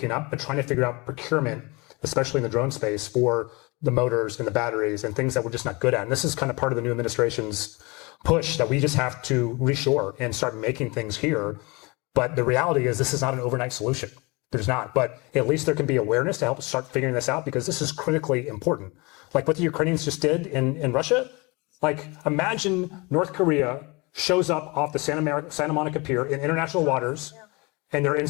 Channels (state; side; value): quieter; right; 26.4 dB